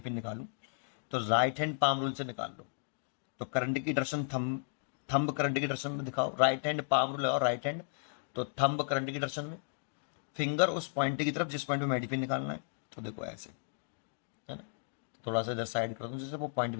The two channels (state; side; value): silent; right; digital silence